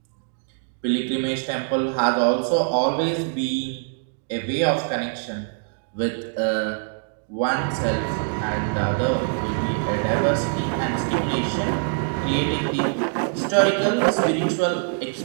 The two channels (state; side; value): silent; left; digital silence